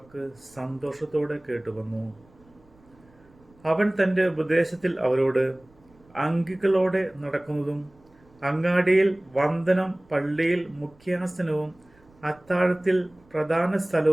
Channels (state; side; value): noise; right; rumble, 30 dB below the sound